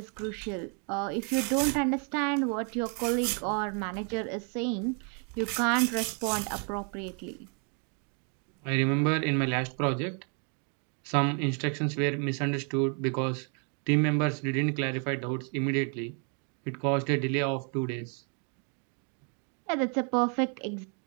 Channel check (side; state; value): left; quieter; 39.5 dB